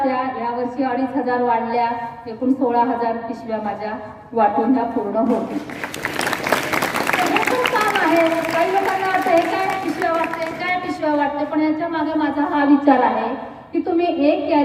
यावर्षी 2,500 वाढल्या. एकूण 16,000 पिशव्या माझ्या वाटून ह्या पूर्ण होतील. काम आहे. काही लोकांना वाटतं हे काय पिशव्या वाटते, काय पिशव्या वाटते, पण याच्या मागे माझा हा विचार आहे की तुम्ही एक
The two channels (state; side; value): identical; both; correlation 1.00